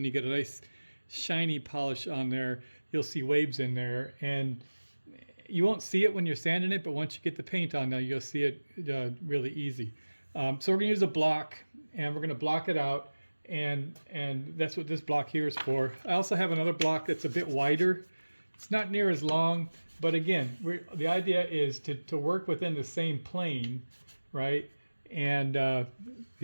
you get a nice shiny polish on there, you'll see waves in there, and you won't see it when you're sanding it, but once you get the paint on there, you'll see it really easy. So we're going to use a block, and we're going to block it out, and that's what this block here is for. I also have another block that's a bit wider. It's not near as long, but again, the idea is to work within the same plane, right? And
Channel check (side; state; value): both; inverted; correlation -1.00